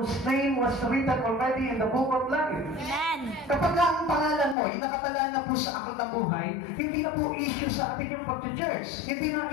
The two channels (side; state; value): right; drops out; at 4.5 s